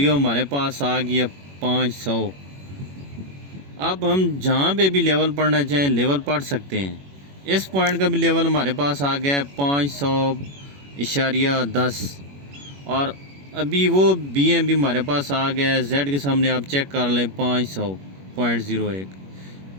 हमारे पास आ गई है 500। अब हम जहाँ पे भी लेवल पढ़ना चाहें लेवल पढ़ सकते हैं। इस पॉइंट का भी लेवल हमारे पास आ गया है 500.10, और अभी वो बीएम भी हमारे पास आ गया है। जेड के सामने आप चेक कर लें 500.01।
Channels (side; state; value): left; late; 21 ms